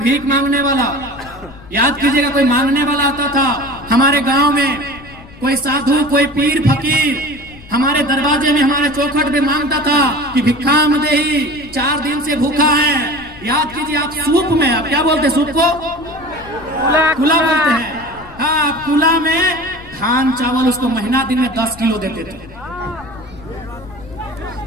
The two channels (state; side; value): noise; left; rumble, 20 dB below the sound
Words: मांगने वाला, याद कीजिएगा, कोई मांगने वाला आता था। हमारे गांव में कोई साधु, कोई पीर फकीर हमारे दरवाजे में, हमारे चौखट में मांगता था कि भिक्षाम देही, 4 दिन से भूखा है। याद कीजिए, आप सूप में, आप क्या बोलते हैं सूप को? कुला बोलते हैं। हाँ, कुला में धान चावल उसको महीना दिन में 10 किलो देते थे।